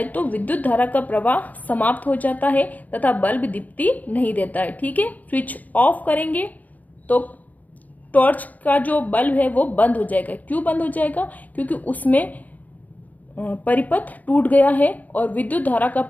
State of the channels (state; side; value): late; right; 0.079 ms